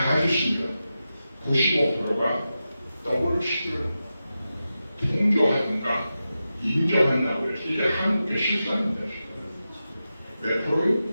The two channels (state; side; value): inverted; both; correlation -0.91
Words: 가졌습니다. 95%가 WC를 통조하든가 인정한다고 해서 이게 한국의 실상입니다. 몇 프로요?